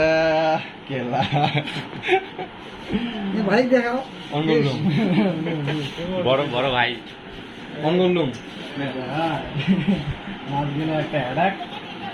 केला ये भाई देखाओ অঙ্গলুম বড় বড় ভাই অঙ্গলুম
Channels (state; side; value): identical; both; correlation 1.00